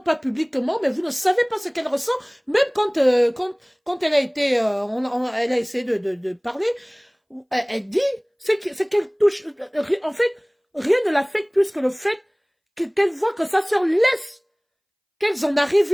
pas publiquement, mais vous ne savez pas ce qu'elle ressent. Même quand elle a été, elle a essayé de parler, elle dit, c'est qu'elle touche. En fait, rien ne l'affecte plus que le fait qu'elle voit que sa sœur laisse qu'elles en arrivent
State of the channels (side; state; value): both; identical; correlation 1.00